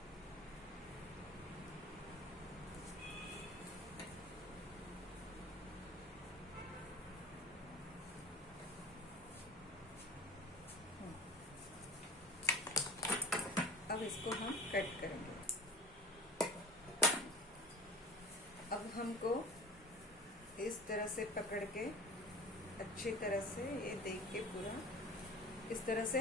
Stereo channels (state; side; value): normal; both; correlation 0.35